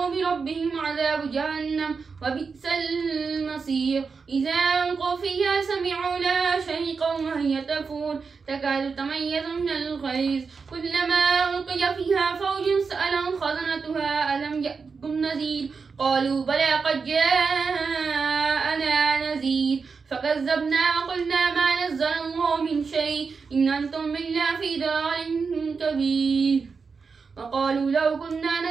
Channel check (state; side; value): quieter; left; 5.1 dB